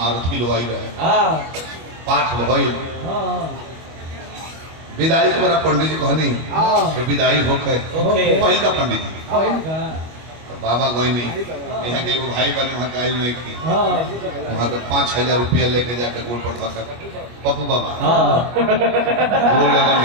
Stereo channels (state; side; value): late; left; 25 ms